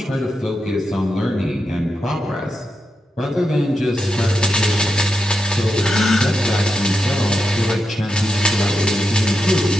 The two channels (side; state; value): both; normal; correlation 0.87